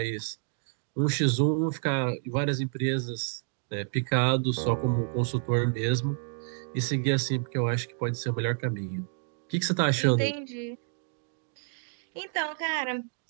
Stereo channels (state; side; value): silent; left; digital silence